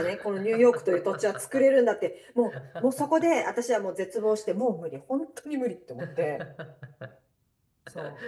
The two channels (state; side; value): identical; both; correlation 1.00